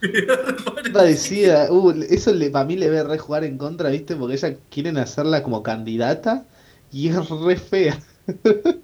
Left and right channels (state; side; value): identical; both; correlation 1.00